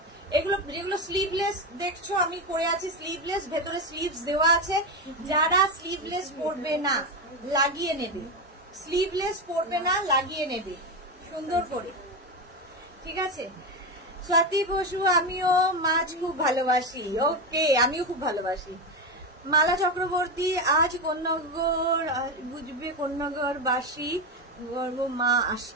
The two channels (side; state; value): both; normal; correlation 0.14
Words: এগুলো যেগুলো স্লিভলেস দেখছো আমি পরে আছি, স্লিভলেস, ভেতরে স্লিভস দেওয়া আছে। যারা স্লিভলেস পরবে না লাগিয়ে নেবে, স্লিভলেস পরবে না লাগিয়ে নেবে সুন্দর করে, ঠিক আছে? স্বাতি বসু, আমিও মাছ খুব ভালোবাসি। ওকে, আমিও খুব ভালোবাসি। মালা চক্রবর্তী, আজ কন্যাগর বুঝবে, কন্যাগর বাসী গর্ব মা